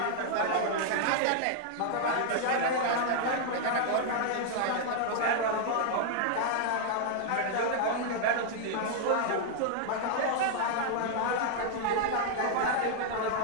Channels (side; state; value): both; different; correlation 0.00